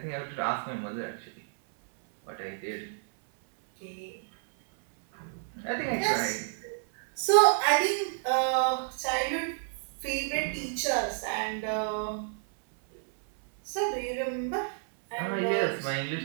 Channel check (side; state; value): left; silent; 58 dB below the other